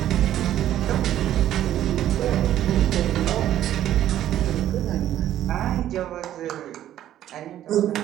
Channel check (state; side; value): quieter; left; 12.1 dB